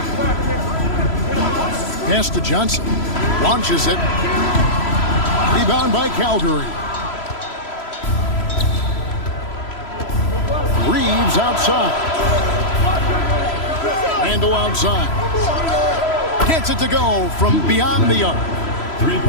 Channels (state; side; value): late; right; 3.0 ms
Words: Pass to Johnson. Launches it. Rebound by Calgary. Reeves outside. Randall outside. Gets it to go from beyond the arc.